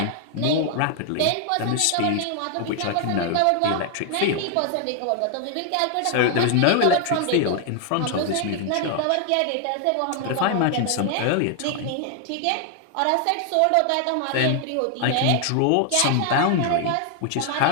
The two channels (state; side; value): different; both; correlation 0.00